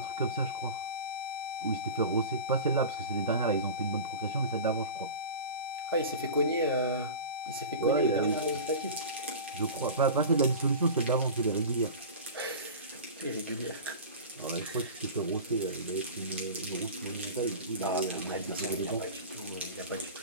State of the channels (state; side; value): inverted; both; correlation -0.32